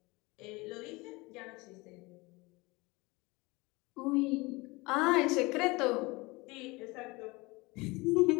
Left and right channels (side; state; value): right; quieter; 24.0 dB